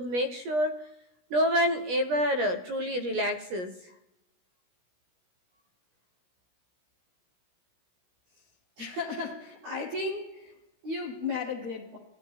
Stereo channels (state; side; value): late; left; 17 ms